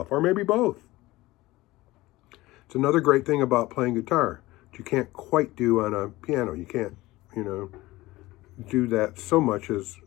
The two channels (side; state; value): right; quieter; 18.9 dB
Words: or maybe both. It's another great thing about playing guitar that you can't quite do on a piano. You can't, do that so much as